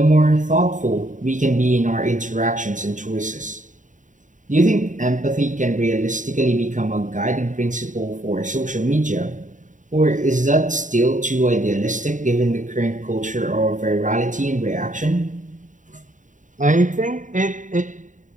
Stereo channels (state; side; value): late; left; 0.37 ms